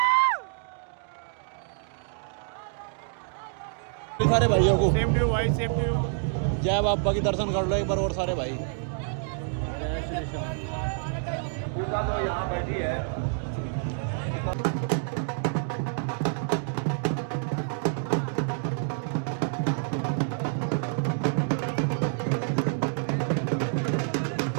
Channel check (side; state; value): left; silent; digital silence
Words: सारे भाइयों को सेम टू यू भाई, सेम टू यू। जय बाबा की दर्शन कर लो एक बार और सारे भाई। जय श्री श्याम। पूजा तो यहाँ बैठी है।